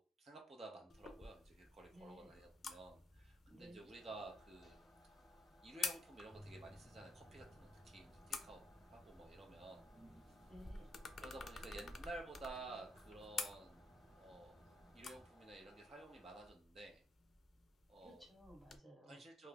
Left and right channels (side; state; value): both; normal; correlation 0.76